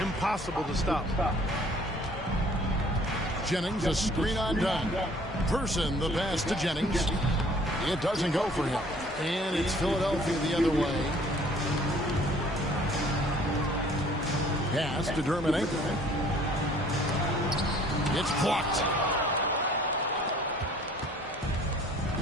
Impossible to stop. Jennings, a screen on done. Person, the pass to Jennings. It doesn't go for him. And it's Philadelphia the other way. Pass to Dermanenko. It's blocked.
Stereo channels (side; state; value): both; normal; correlation 0.55